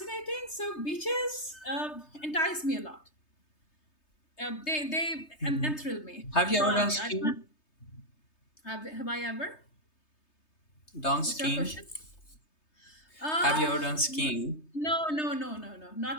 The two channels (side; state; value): right; late; 3.3 ms